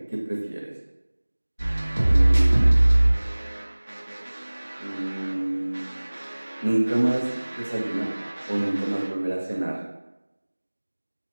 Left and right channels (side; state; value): both; inverted; correlation -1.00